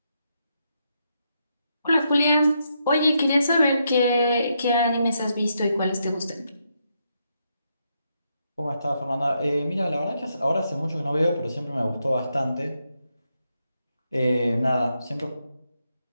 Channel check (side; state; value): both; inverted; correlation -0.80